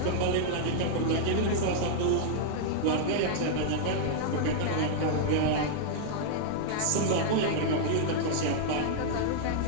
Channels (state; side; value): different; both; correlation -0.01